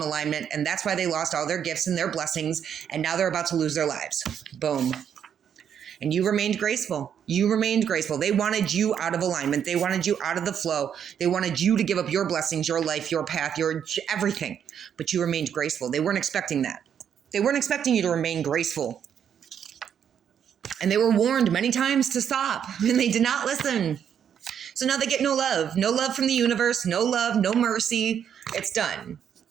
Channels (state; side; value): quieter; left; 8.5 dB